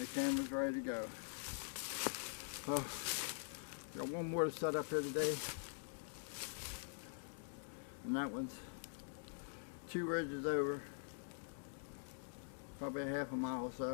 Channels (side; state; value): right; silent; digital silence